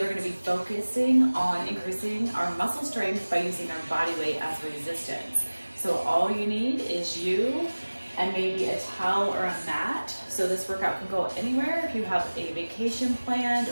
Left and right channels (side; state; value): both; inverted; correlation -1.00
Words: we're going to be focusing on increasing our muscle strength by using our body weight as resistance. So all you need is you and maybe a towel or a mat. So this workout can go anywhere. If you have a vacation planned